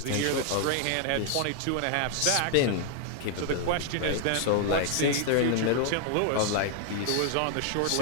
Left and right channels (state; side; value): different; both; correlation 0.00